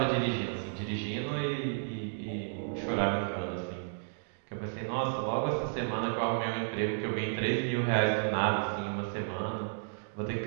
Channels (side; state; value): left; silent; digital silence